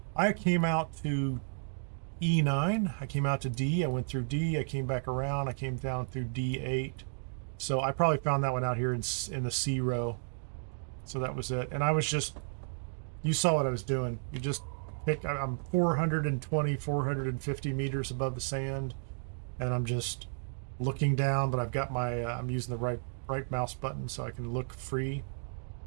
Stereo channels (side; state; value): left; silent; digital silence